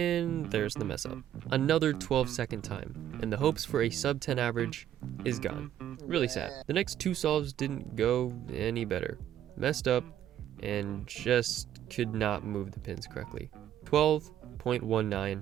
there's the mess up. Another 12-second time, and the hopes for a sub 10 average is gone. Really sad. The next 2 solves didn't go any better. Messed up, and just could not move the pins correctly.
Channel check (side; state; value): left; quieter; 11.2 dB